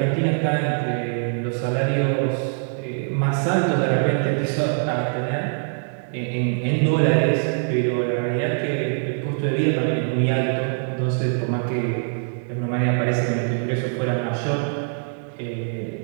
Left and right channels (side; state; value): left; silent; digital silence